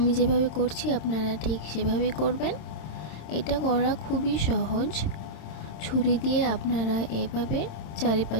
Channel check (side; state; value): right; late; 27 ms